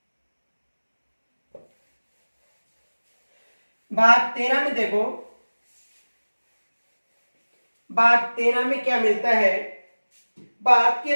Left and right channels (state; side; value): inverted; both; correlation -1.00